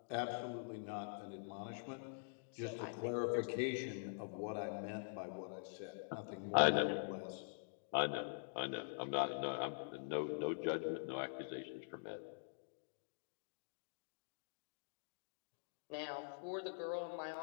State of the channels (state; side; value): silent; right; digital silence